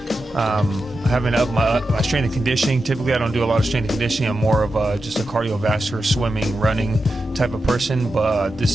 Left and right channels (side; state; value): both; normal; correlation 0.89